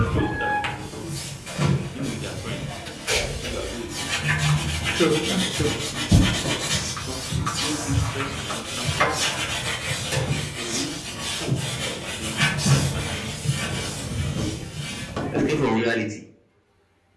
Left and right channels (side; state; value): both; identical; correlation 1.00